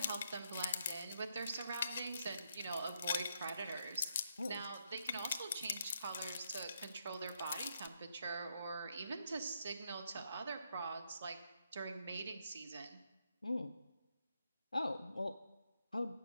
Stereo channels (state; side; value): inverted; both; correlation -0.77